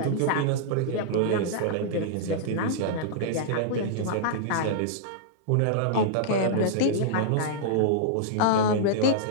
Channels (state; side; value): different; both; correlation -0.02